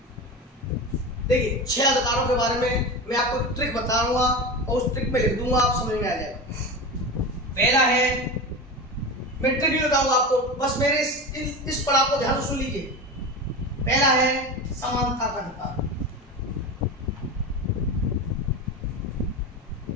देखिए 6 अधिकारों के बारे में मैं आपको ट्रिक बताऊंगा और उस ट्रिक में लिख दूंगा, आप समझ में आ जाएगा। पहला है, मैं ट्रिक भी बताऊंगा आपको, बस मेरे इस पड़ाव को ध्यान से सुन लीजिए। पहला है समानता का अधिकार,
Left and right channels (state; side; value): normal; both; correlation 0.25